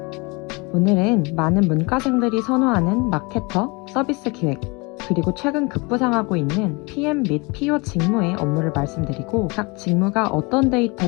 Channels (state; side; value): quieter; right; 27.8 dB